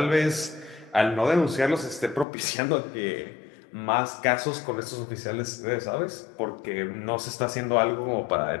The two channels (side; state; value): right; drops out; at 2.2 s